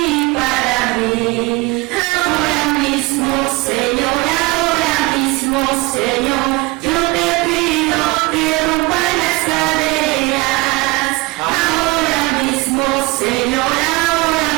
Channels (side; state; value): left; quieter; 22.5 dB